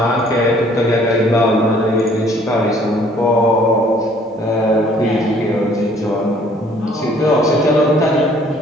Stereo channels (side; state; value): both; normal; correlation 0.59